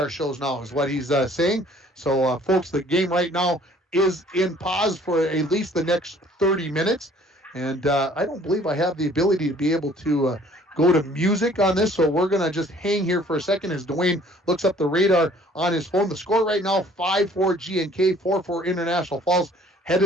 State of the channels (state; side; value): normal; both; correlation 0.56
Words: shows now, is what he's saying. So, folks, the game right now is in pause for at least the next 30 minutes. And I don't believe I have the ability to be able to go to music on this, so we're going to just hang here for a second as Dwayne looks up the radar on his phone. The score right now, 5-4 GNK, 4-4 International Falls,